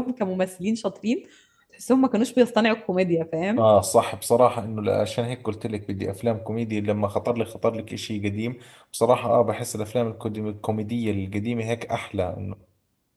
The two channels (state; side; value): identical; both; correlation 1.00